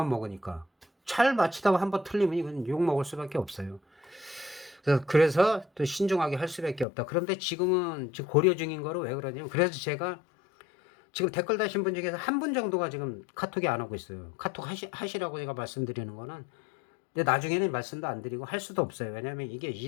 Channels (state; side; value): drops out; right; at 6.9 s